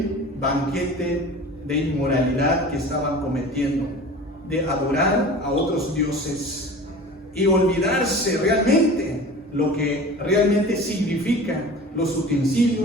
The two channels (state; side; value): normal; both; correlation 0.38